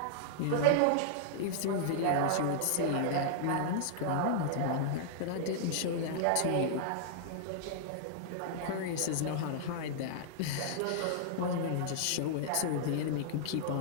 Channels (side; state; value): both; different; correlation -0.01